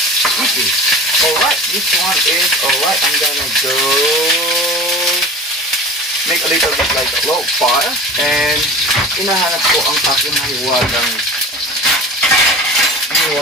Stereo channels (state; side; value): normal; both; correlation 0.37